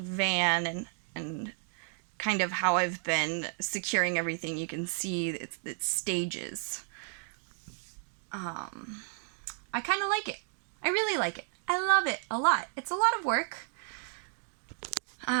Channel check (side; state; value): left; silent; 56 dB below the other